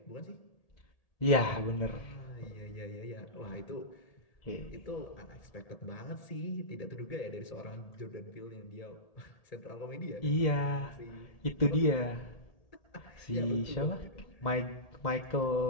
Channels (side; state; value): right; late; 1.8 ms